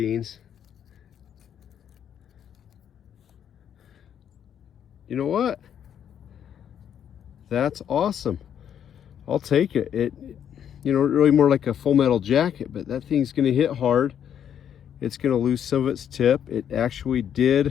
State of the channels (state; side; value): quieter; right; 9.2 dB